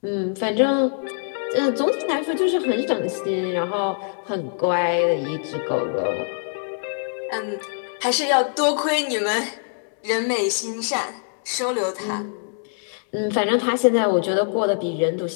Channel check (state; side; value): silent; right; 63 dB below the other